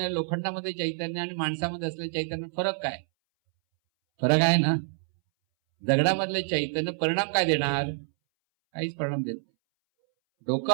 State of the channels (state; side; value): silent; left; 60 dB below the other